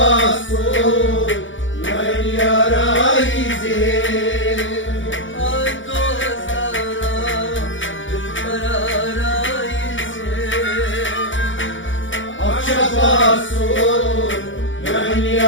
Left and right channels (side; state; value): right; late; 0.56 ms